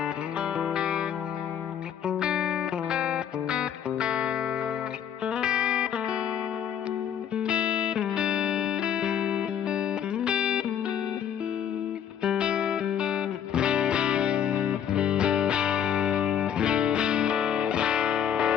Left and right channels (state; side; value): quieter; right; 9.1 dB